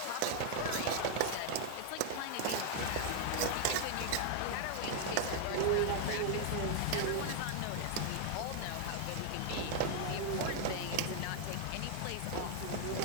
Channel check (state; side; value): different; both; correlation 0.00